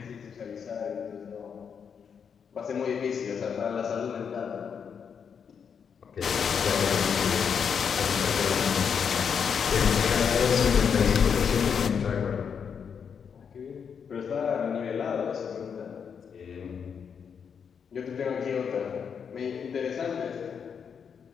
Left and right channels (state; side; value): quieter; right; 6.9 dB